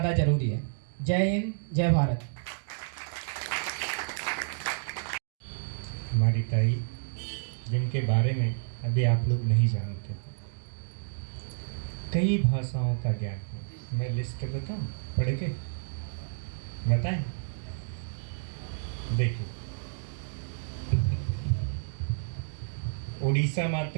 ज़रूरी है। जय हिंद, जय भारत। हमारी ताई जिनके बारे में अभी आप लोग नहीं जानते, कई भाषाओं का ज्ञान है। मैं लिस्ट बताऊं, पढ़ के बताएं? देखिए, उड़ीसा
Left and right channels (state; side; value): silent; left; digital silence